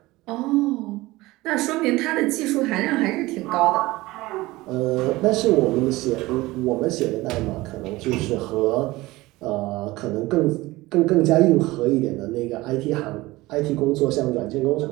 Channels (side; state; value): left; quieter; 19.6 dB